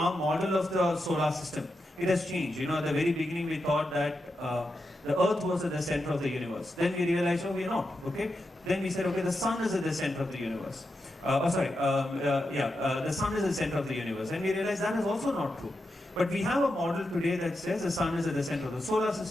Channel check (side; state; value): both; normal; correlation 0.87